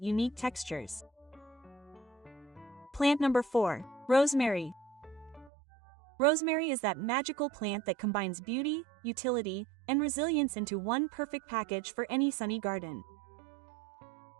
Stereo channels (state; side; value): drops out; left; at 5.5 s